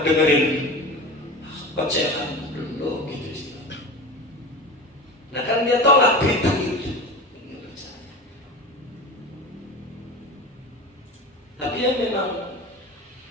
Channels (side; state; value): both; normal; correlation 0.30